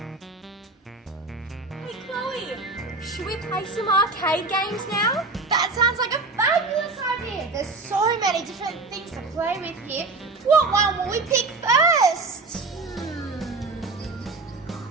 Hey Chloe, should we play some arcade games now? That sounds like a fabulous idea. There's so many different things to play with here. What one will we pick first?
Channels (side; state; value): left; quieter; 3.6 dB